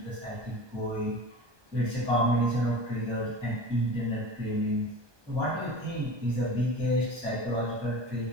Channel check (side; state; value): left; late; 1.2 ms